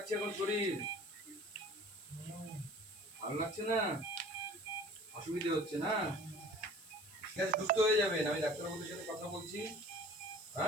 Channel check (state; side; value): noise; right; hiss, 20 dB below the sound